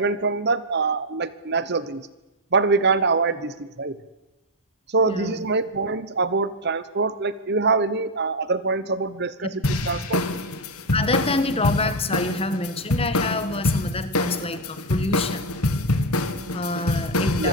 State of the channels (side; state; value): both; normal; correlation 0.01